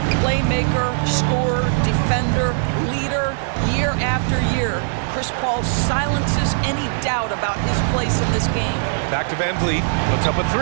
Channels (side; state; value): left; silent; digital silence